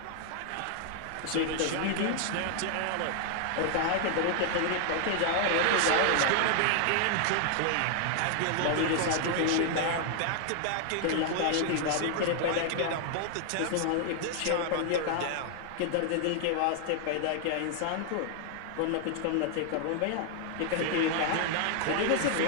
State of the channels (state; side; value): different; both; correlation 0.00